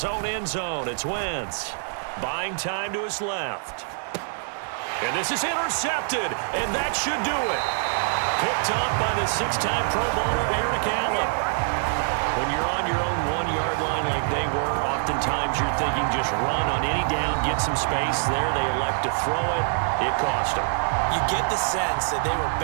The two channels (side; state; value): left; silent; digital silence